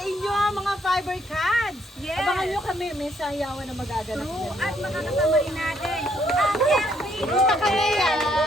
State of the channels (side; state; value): both; normal; correlation 0.70